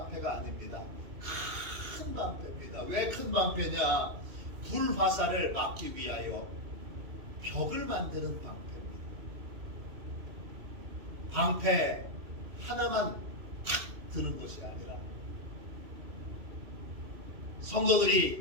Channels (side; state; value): left; late; 2.6 ms